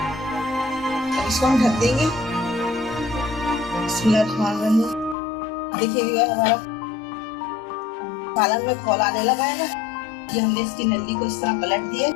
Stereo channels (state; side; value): drops out; right; at 5.2 s